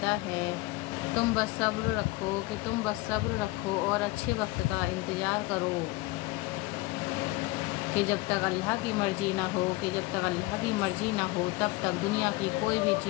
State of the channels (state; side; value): quieter; right; 20.8 dB